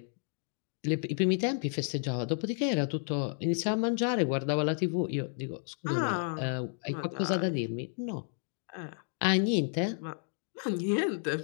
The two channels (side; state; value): right; silent; 57 dB below the other